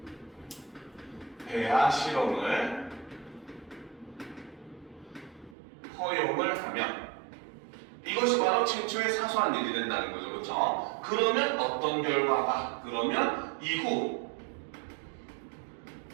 배아 실험을 허용을 하면 이것이 바로 최초의 사소한 일이 된다는 거죠. 그렇죠? 그러면 어떤 결과가? 그러면 이후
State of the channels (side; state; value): left; drops out; at 5.6 s